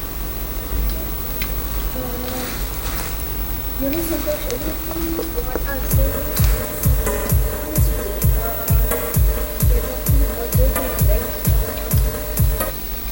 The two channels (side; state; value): both; identical; correlation 1.00